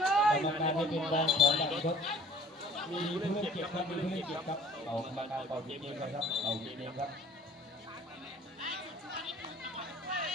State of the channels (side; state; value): both; normal; correlation 0.50